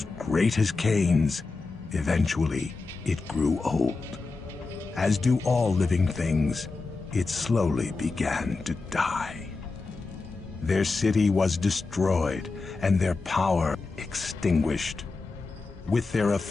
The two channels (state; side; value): quieter; right; 3.9 dB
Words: great as Cain's, eventually it grew old. As do all living things, it slowly began to die. Their city was destroyed and their power extinguished. With their